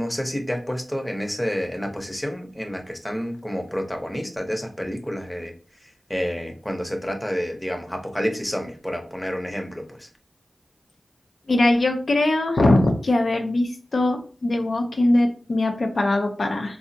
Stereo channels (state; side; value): normal; both; correlation 0.96